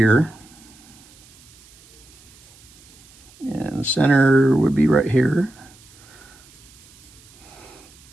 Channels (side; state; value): right; noise; hiss, 25 dB below the sound